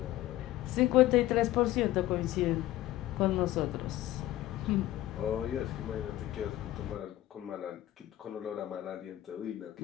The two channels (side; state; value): right; quieter; 15.0 dB